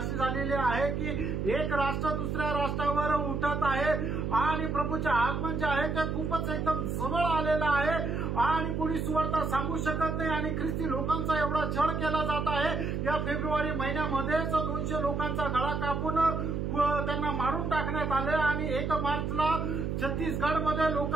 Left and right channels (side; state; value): right; noise; hum, 1 dB below the sound